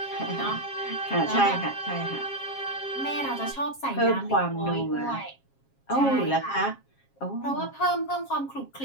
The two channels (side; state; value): right; late; 7.4 ms